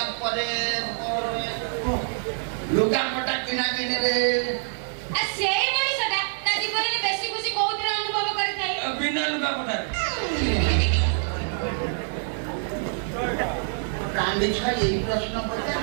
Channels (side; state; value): left; silent; digital silence